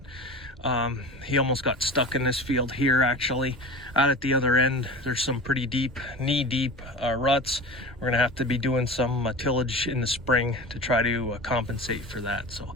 He almost got stuck in this field here, actually. Out at the other end, there's some pretty deep, knee-deep ruts. We're gonna have to be doing some tillage in the spring to try to compensate for that. So,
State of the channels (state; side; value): normal; both; correlation 0.33